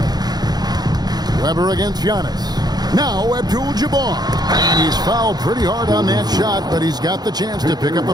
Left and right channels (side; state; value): left; late; 0.19 ms